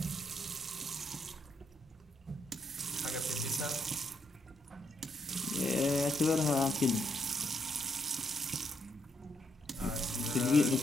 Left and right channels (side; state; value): both; normal; correlation 0.74